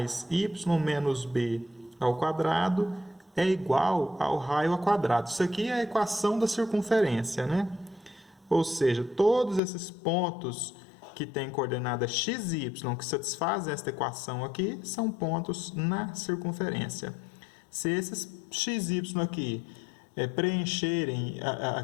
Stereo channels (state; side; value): drops out; right; at 9.6 s